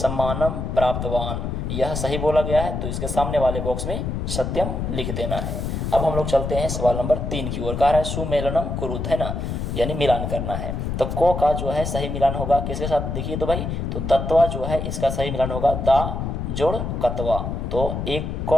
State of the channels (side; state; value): left; noise; rumble, 3 dB below the sound